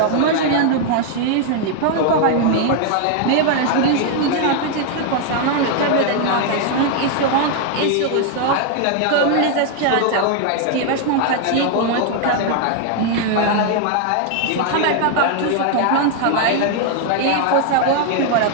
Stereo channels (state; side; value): different; both; correlation 0.00